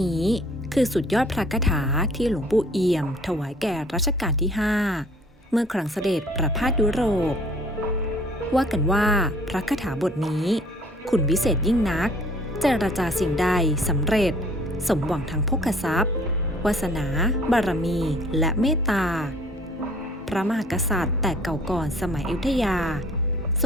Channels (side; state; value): both; normal; correlation 0.55